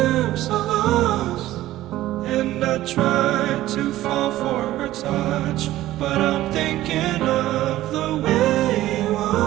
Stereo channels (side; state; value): left; quieter; 15.1 dB